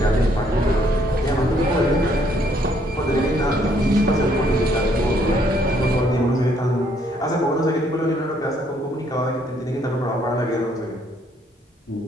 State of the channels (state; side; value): normal; both; correlation 0.68